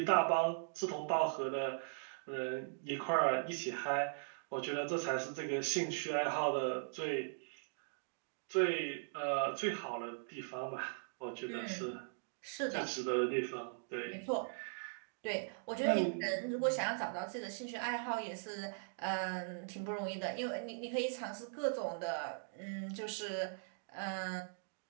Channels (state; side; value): silent; left; digital silence